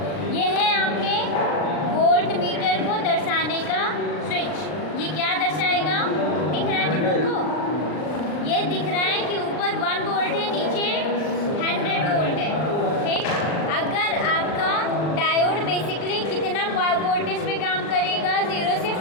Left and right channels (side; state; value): right; late; 39 ms